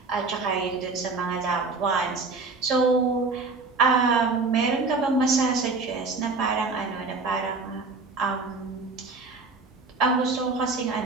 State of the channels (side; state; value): left; quieter; 4.0 dB